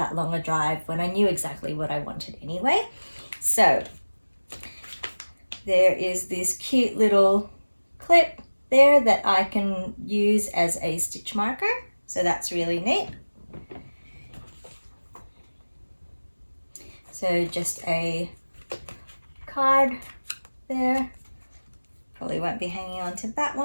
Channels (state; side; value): inverted; both; correlation -1.00